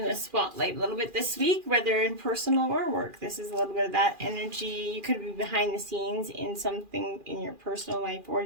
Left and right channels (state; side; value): late; left; 2.4 ms